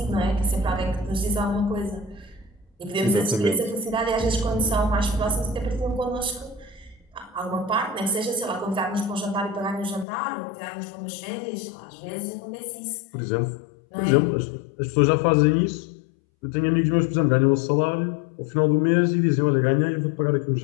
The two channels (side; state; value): right; drops out; at 10.1 s